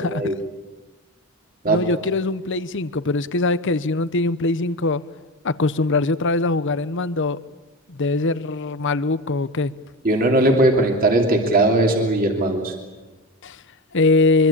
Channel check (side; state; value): both; normal; correlation 0.23